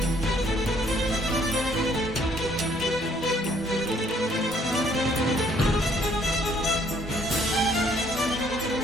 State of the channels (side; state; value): both; normal; correlation 0.64